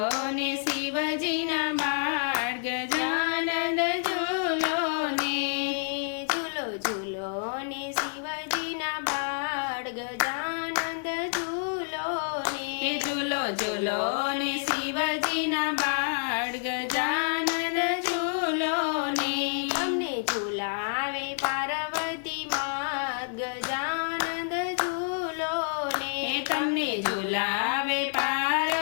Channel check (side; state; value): right; silent; 57 dB below the other